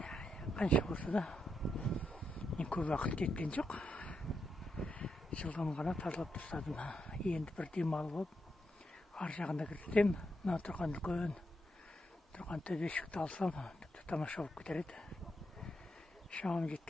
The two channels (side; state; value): both; normal; correlation 0.83